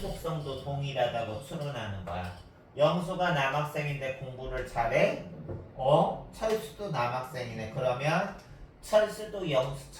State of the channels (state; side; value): identical; both; correlation 1.00